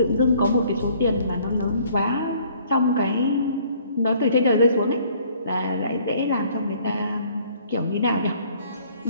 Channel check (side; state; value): both; inverted; correlation -0.59